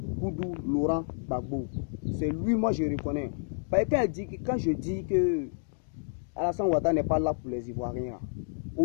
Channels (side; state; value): right; silent; digital silence